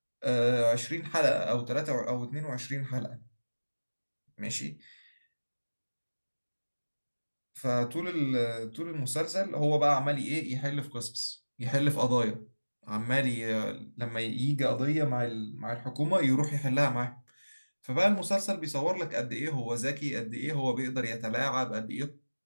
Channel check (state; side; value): inverted; both; correlation -1.00